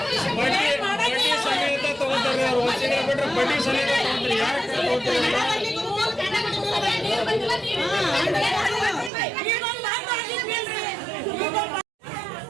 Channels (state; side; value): drops out; left; at 9.1 s